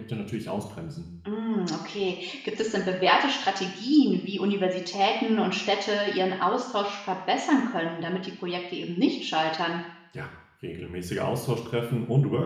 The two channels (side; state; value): both; identical; correlation 1.00